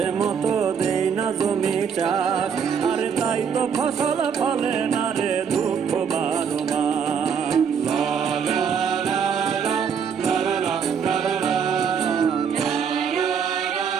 মতো দেই না জমি চাষ, আরে তাই তো ফসল ফলে না রে দুঃখ 12 মাস।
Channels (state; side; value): quieter; left; 6.9 dB